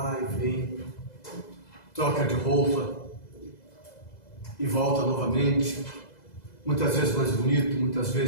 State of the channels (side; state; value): right; late; 2.0 ms